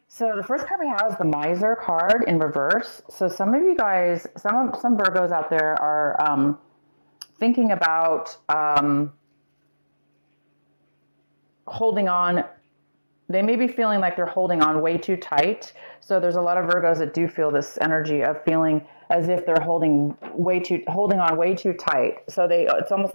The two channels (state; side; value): inverted; both; correlation -1.00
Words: So the first card we have is the Miser card in reverse. So some of you guys, some Virgos out there are thinking about holding on. They may be feeling like they're holding on way too tight. So there's a lot of Virgos that do feel this energy of feeling as if they're holding on way too tight. So it's almost